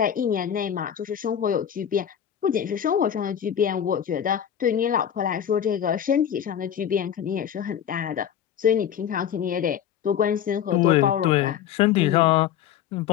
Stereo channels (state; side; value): quieter; right; 9.5 dB